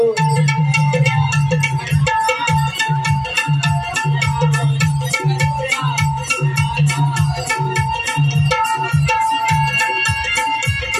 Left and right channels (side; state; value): both; identical; correlation 1.00